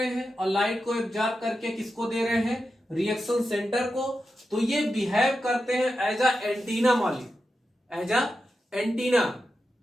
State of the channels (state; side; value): normal; both; correlation 0.90